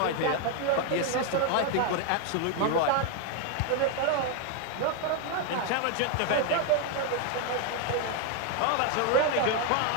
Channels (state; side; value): different; both; correlation 0.01